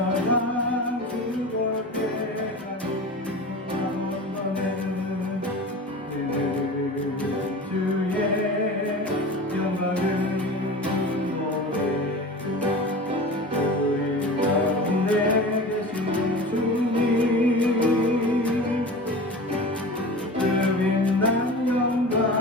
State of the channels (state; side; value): normal; both; correlation 0.33